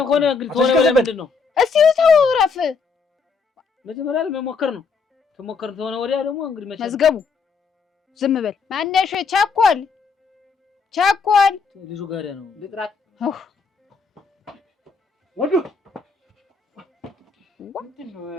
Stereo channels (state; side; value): quieter; right; 5.0 dB